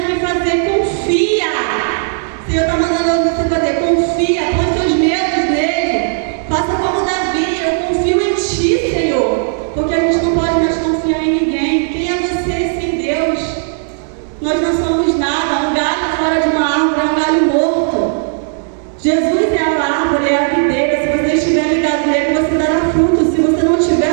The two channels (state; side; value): silent; left; digital silence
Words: que fazer, confia. O Senhor está mandando você fazer, confia. Põe seus medos nele. Faça como Davi, eu confio em ti, Senhor. Porque a gente não pode mais confiar em ninguém. Quem é você sem Deus? Nós não somos nada. Um galho fora de uma árvore é um galho morto. Jesus é a árvore, é a videira. Se você estiver ligado nele, você dará fruto. Se você não tiver,